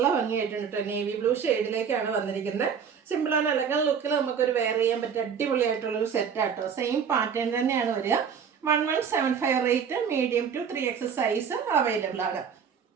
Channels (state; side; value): quieter; left; 7.0 dB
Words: ഭംഗിയായിട്ടുണ്ട് കേട്ടോ. നേവി ബ്ലൂ ഷെയ്ഡിലേക്കാണ് വന്നിരിക്കുന്നത്. സിമ്പിൾ ആൻഡ് എലഗൻ ലുക്കിൽ നമുക്കൊരു വെയർ ചെയ്യാൻ പറ്റിയ അടിപൊളിയായിട്ടുള്ളൊരു സെറ്റാട്ടോ. സെയിം പാറ്റേൺ തന്നെയാണ് വരിക. 1175 rate. Medium to 3X size available ആണ്.